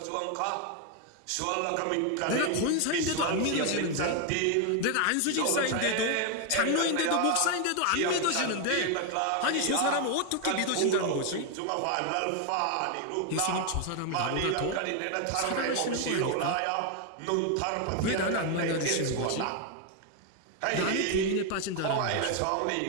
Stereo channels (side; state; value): both; different; correlation 0.01